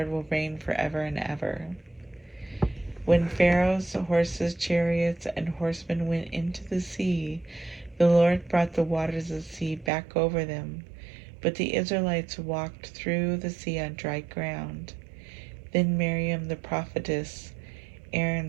will reign forever and ever. When Pharaoh's horses, chariots, and horsemen went into the sea, the Lord brought the waters of the sea back over them. But the Israelites walked through the sea on dry ground. Then Miriam the prophetess,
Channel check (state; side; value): drops out; left; at 9.9 s